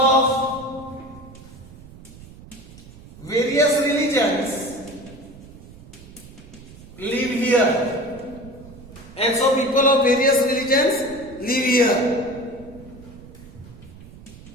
various religions live here, and so people of various religions live here,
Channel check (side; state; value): right; noise; rumble, 19 dB below the sound